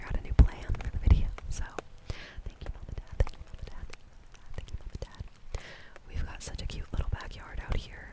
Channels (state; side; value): identical; both; correlation 1.00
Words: out a new plan for the video. So thank you, Mom and Dad. Thank you, Mom and Dad. Thank you, Mom and Dad. We've got such a cute little backyard out here.